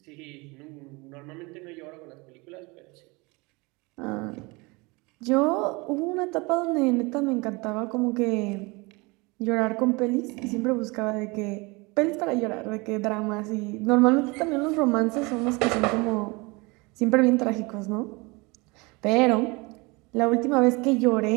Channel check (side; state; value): left; quieter; 26.0 dB